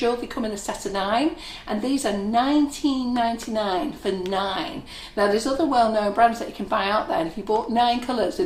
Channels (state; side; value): identical; both; correlation 1.00